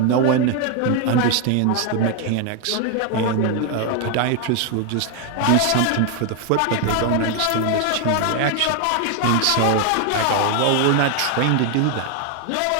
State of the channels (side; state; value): both; different; correlation 0.01